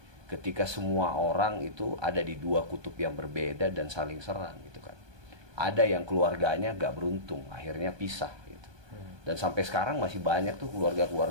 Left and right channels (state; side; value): late; left; 1.2 ms